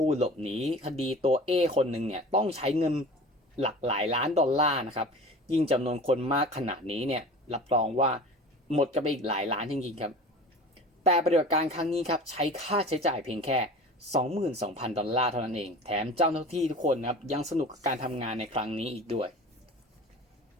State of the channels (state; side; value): normal; both; correlation 0.38